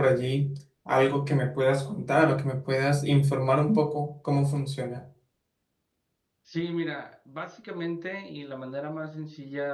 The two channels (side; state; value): both; identical; correlation 1.00